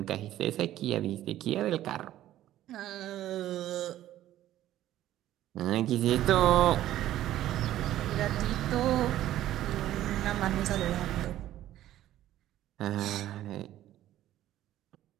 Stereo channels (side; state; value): left; quieter; 13.3 dB